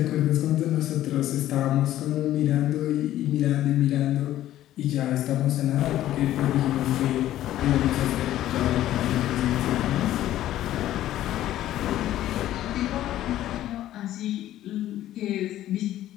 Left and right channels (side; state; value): right; quieter; 13.3 dB